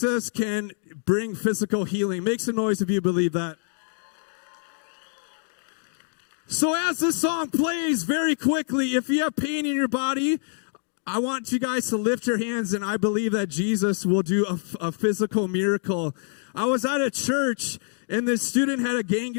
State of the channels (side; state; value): right; silent; 61 dB below the other